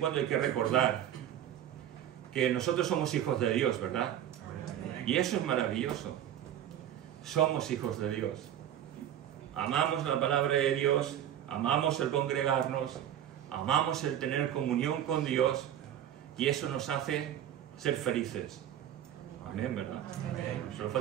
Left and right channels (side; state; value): left; quieter; 10.7 dB